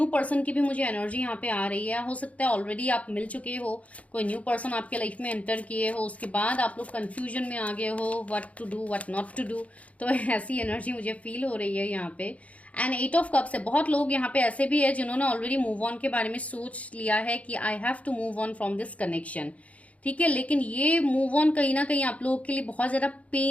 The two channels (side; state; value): right; late; 0.066 ms